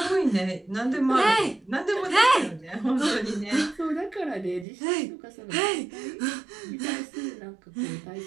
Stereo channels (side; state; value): left; drops out; at 4.7 s